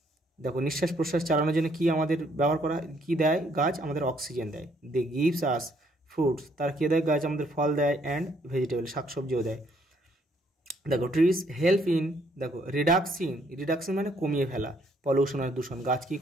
দেখো নিঃশ্বাস প্রশ্বাস চালানোর জন্য কি আমাদের ব্যবহার করা, কি দেয় গাছ, আমাদের অক্সিজেন দেয়। দে গিভস আস ফ্রুটস, তার কে দেয় গাছ, আমাদের ফল দেয়, অ্যান্ড ভেজিটেবল শাকসবজিও দেয়। দেখো ট্রিজ হেল্প ইন, দেখো রিডাকশন মানে কমিয়ে ফেলা, পলিউশন আর দূষণ, গাছ কী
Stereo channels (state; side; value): normal; both; correlation 0.68